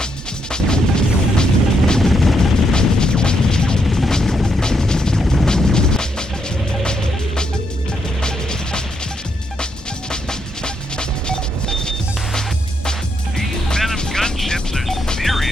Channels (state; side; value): normal; both; correlation 0.78